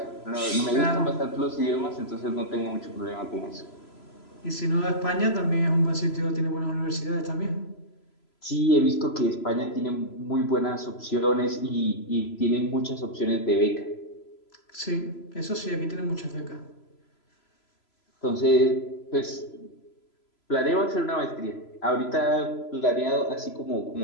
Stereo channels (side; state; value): right; late; 3.0 ms